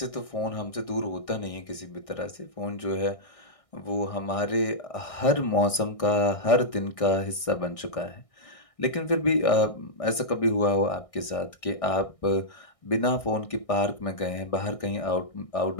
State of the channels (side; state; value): right; late; 1.6 ms